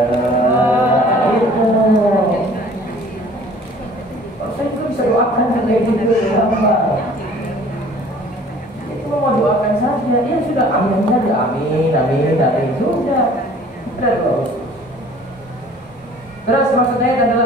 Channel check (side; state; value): both; normal; correlation 0.51